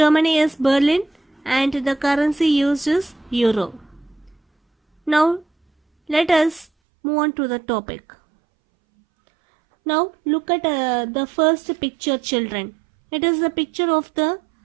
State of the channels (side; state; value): left; drops out; at 6.7 s